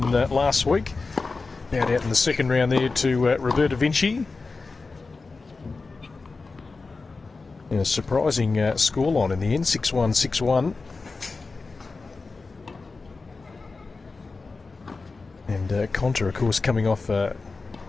last week. Bowed out in the second round there to Roberta Vinci. And a surprising scoreline in the end, 6-1, 6-1. And Konta, of course, coming off a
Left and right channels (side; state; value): right; quieter; 4.0 dB